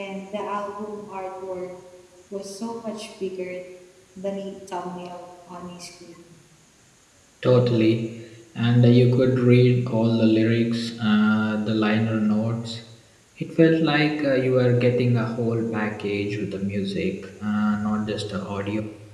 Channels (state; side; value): identical; both; correlation 1.00